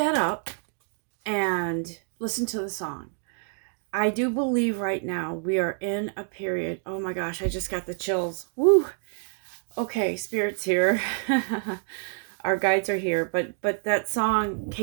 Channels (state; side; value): silent; left; 58 dB below the other